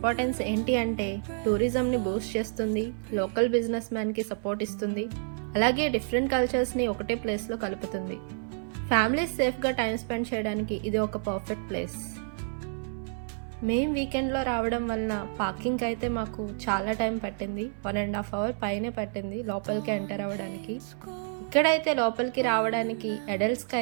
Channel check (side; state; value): left; silent; 58 dB below the other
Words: ఏంటి అంటే టూరిజంని బూస్ట్ చేస్తుంది, లోకల్ బిజినెస్ మ్యాన్కి సపోర్ట్ ఇస్తుంది, అలాగే డిఫరెంట్ కల్చర్స్ని ఒకటే ప్లేస్లో కలుపుతుంది. ఫ్యామిలీస్ సేఫ్గా టైం స్పెండ్ చేయడానికి ఇది ఒక పర్ఫెక్ట్ ప్లేస్. మేము వీకెండ్లో రావడం వలన పార్కింగ్కి అయితే మాకు చాలా టైం పట్టింది. 1.5 hours పైనే పట్టింది లోపలికి ఎంటర్ అవ్వడానికి. ఇక్కడైతే లోపలికి రావడానికి అడల్ట్స్కి